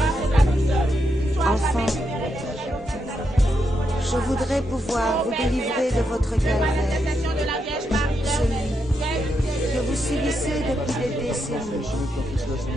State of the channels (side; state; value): both; normal; correlation 0.82